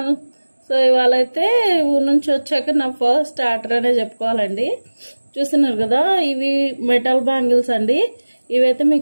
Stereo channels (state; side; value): inverted; both; correlation -1.00